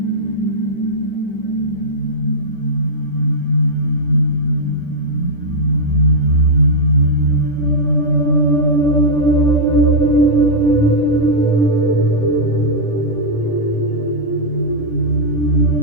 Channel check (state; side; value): late; right; 10 ms